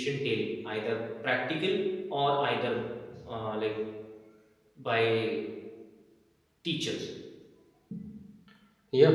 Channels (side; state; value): both; identical; correlation 1.00